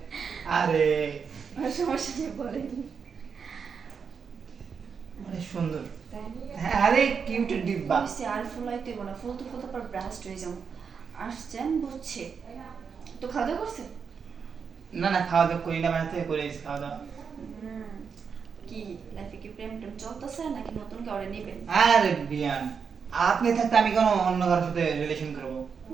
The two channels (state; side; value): quieter; left; 6.2 dB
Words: আরে আর সমস্যা নেই, বলেন। অনেক সুন্দর। তাই? হ্যাঁ, আরে কিউট ডিব্বা। হয়েছে, আর ফুলাইতে না, ফুলতে ফুলতে পর ব্রাস্ট হয়ে যাও। আসছেন বুঝছে, তো খাওয়া দাওয়া করছেন? না না, খাওয়া দাওয়া করি না, বাড়ি থেকে করে এসেছি খাওয়া দাওয়া। কি লাইফে কি প্রেম টেম চলতেছে নাকি নতুন কাউরে নেবেন? আরে বিয়ান, আপনি থাকতে আমি কেন অন্য কারোর সাথে রিলেশন করবো?